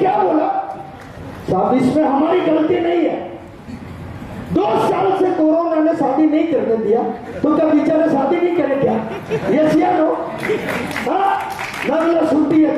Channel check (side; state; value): both; identical; correlation 1.00